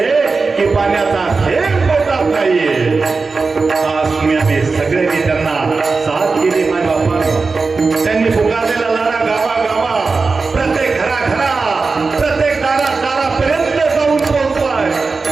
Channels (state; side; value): quieter; left; 4.3 dB